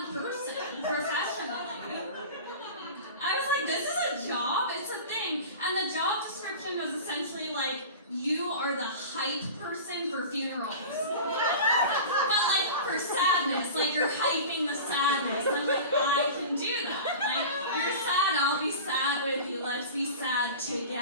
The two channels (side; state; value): both; inverted; correlation -0.34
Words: person, professionally. I was like, this is a job? It's a thing. And the job description was essentially like, you are the hype person for funerals. But like for sadness, like you're hyping the sadness. I'm like, I can do that. Like, you're sad, I'll be sad with you. Let's be sad